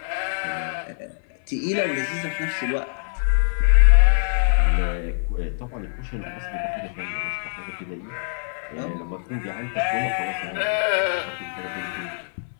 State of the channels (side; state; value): right; silent; 57 dB below the other